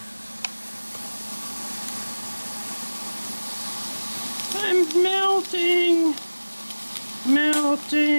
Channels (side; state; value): both; inverted; correlation -1.00